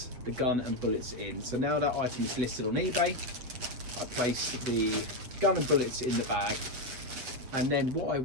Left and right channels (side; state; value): left; late; 8.1 ms